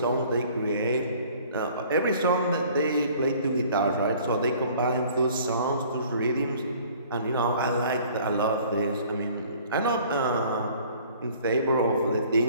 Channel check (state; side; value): inverted; both; correlation -0.53